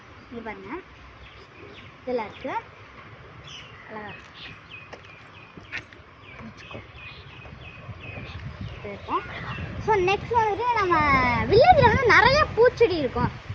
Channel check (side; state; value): both; identical; correlation 1.00